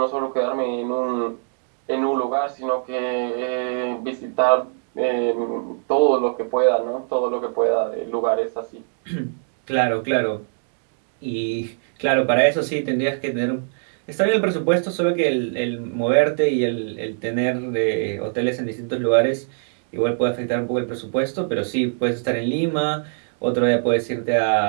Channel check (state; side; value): silent; left; digital silence